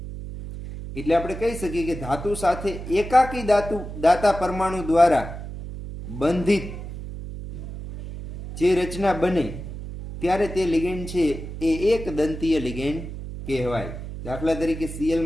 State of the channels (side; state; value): right; noise; hum, 9 dB below the sound